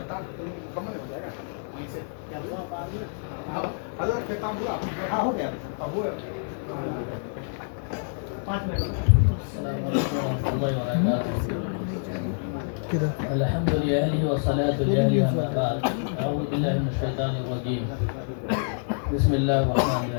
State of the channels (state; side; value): silent; right; digital silence